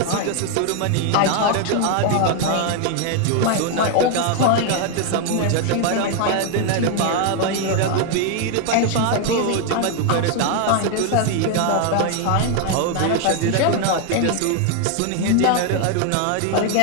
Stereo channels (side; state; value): both; different; correlation 0.00